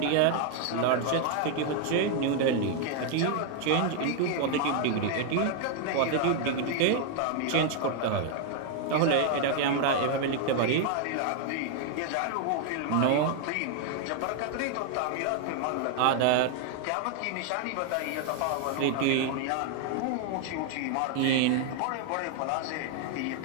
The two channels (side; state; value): both; different; correlation 0.00